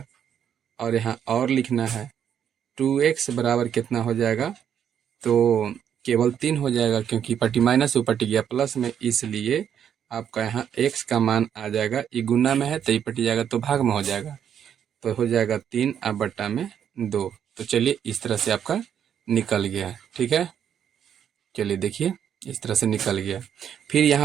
और यहाँ और लिखना है 2x बराबर कितना हो जाएगा, तो केवल 3 हो जाएगा, क्योंकि पट्टी माइनस ऊपर टिक गया प्लस में, इसलिए आपका यहाँ x का मान आ जाएगा, ये गुना में है तो ये पट जाएगा तो भाग में हो जाएगा, तो हो जाएगा 3 अब बट्टा में 2। तो चलिए इस तरह से आपका निकल गया। ठीक है, चलिए देखिए इस तरह से निकल गया। फिर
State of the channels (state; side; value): quieter; left; 8.8 dB